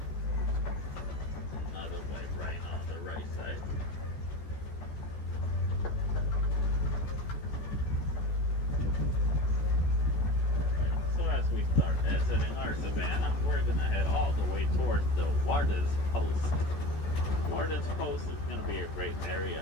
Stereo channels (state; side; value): late; right; 14 ms